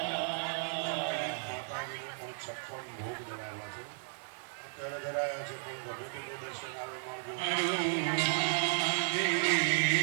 ભોગ ધરાવ્યા છે, અત્યારે ધરાયા છે, પણ ગમે તેનું દર્શન આવે મળજો.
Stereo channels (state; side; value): silent; left; 55 dB below the other